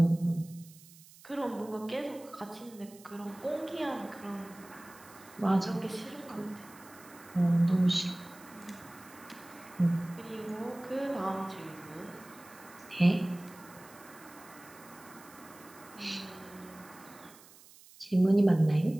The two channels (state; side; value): noise; right; hiss, 22 dB below the sound